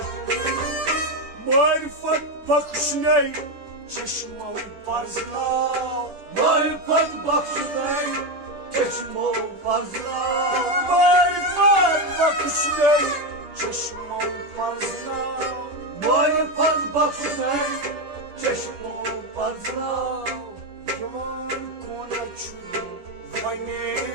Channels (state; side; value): late; left; 10 ms